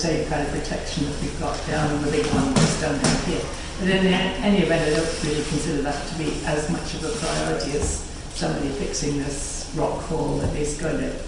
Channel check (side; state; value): both; identical; correlation 1.00